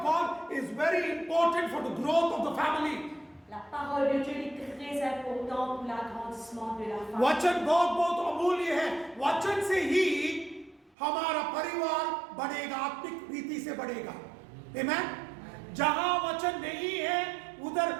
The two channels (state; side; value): drops out; left; at 10.9 s